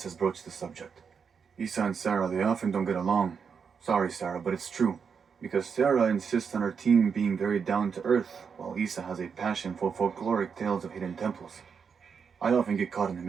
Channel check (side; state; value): left; quieter; 6.3 dB